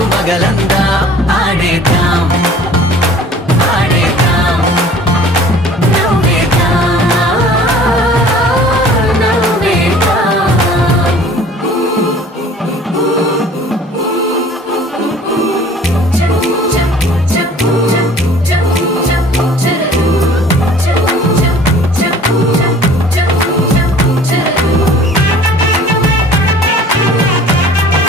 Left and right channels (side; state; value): both; normal; correlation 0.49